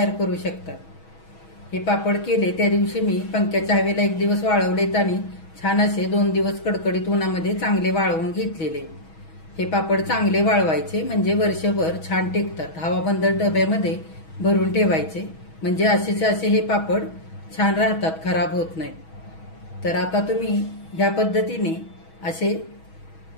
करू शकता. हे पापड केले त्या दिवशी मी पंख्याच्या हवेला 1 दिवस वाळवलेत आणि छान असे 2 दिवस कडकडीत उन्हामध्ये चांगले वाळवून घेतलेले. हे पापड चांगले वाळवायचे म्हणजे वर्षभर छान टिकतात. हवाबंद डब्यामध्ये भरून ठेवायचे म्हणजे असेचे असे हे पापड छान राहतात, खराब होत नाहीत. तर आता तुम्ही ह्या पद्धतीने असे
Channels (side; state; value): right; late; 6.2 ms